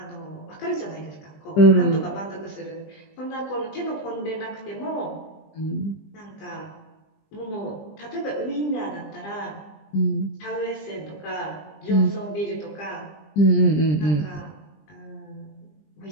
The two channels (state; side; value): late; right; 20 ms